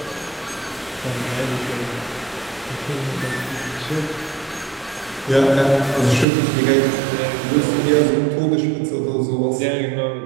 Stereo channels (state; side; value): drops out; left; at 6.2 s